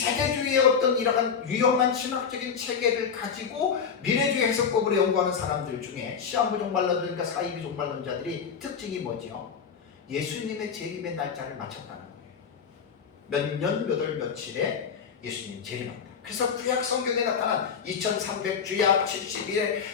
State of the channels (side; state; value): right; quieter; 6.6 dB